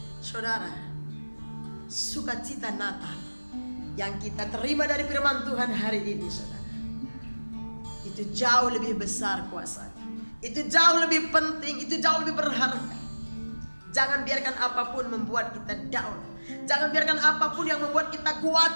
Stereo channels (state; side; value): inverted; both; correlation -1.00